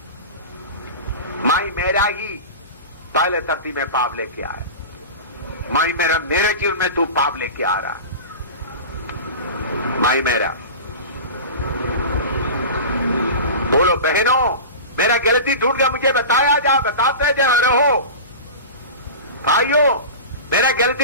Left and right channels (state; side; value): inverted; both; correlation -0.31